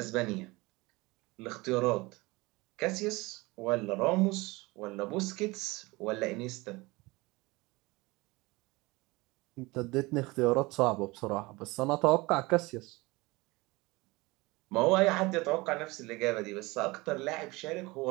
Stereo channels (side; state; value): left; quieter; 23.0 dB